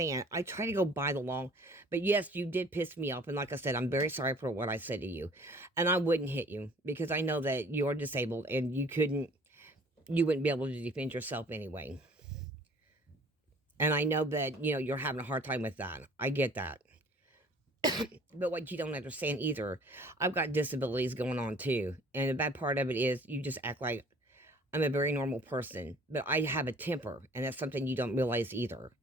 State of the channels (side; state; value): both; normal; correlation 0.53